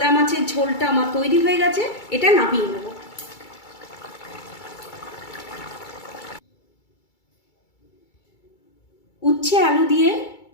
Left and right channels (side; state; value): right; late; 2.3 ms